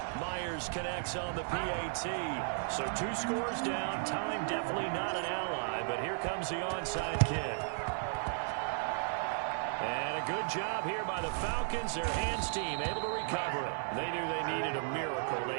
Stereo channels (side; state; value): left; silent; 54 dB below the other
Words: Myers connects on the PAT. So 2 scores down. Time definitely not an ally, but here comes the onside kick. And a good job here by the Falcons. Their hands team able to recover it. They knew they needed a miracle.